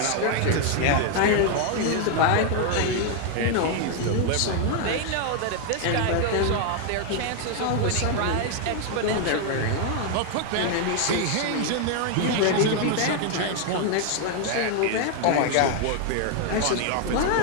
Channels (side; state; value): both; different; correlation 0.01